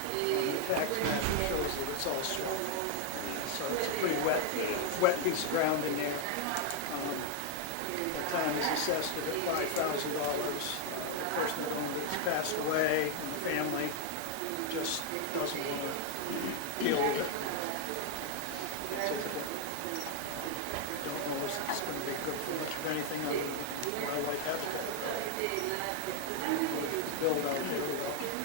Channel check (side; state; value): both; different; correlation 0.00